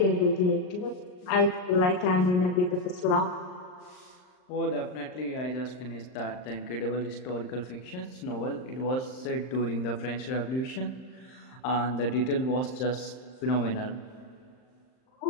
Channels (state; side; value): late; right; 39 ms